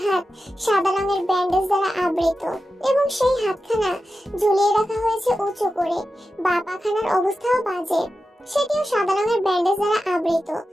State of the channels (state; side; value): normal; both; correlation 0.92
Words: হাত সাদা রঙের ব্যান্ডেজ দ্বারা আবৃত এবং সেই হাতখানা ঝুলিয়ে রাখা হয়েছে উঁচু করে। বাঁ পাখানার অবস্থাও বাজে, সেটিও সাদা রঙের ব্যান্ডেজ দ্বারা আবৃত।